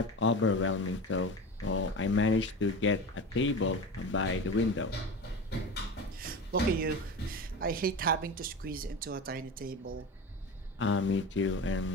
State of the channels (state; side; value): normal; both; correlation 0.29